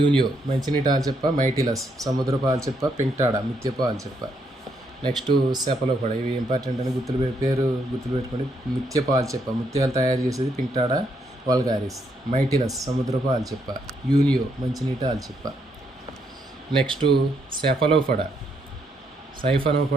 మంచినీటి ఆల్చిప్ప, మైటిలస్ సముద్రపు ఆల్చిప్ప, పింక్టాడా ముత్యపు ఆల్చిప్ప. Next Cephalopoda. ఇవి ఇంపార్టెంట్ అని పేరు గుర్తుపెట్టుకోండి. ముత్యపు ఆల్చిప్ప ముత్యాలు తయారు చేసేది పింక్టాడా వల్గారిస్. మైటిలస్ సముద్రపు ఆల్చిప్ప. యూనియో మంచినీటి ఆల్చిప్ప. నెక్స్ట్ సెఫలోపోడా,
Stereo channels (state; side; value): normal; both; correlation 0.75